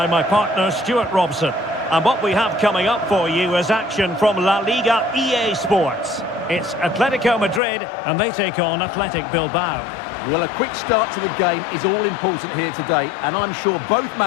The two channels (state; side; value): drops out; right; at 7.6 s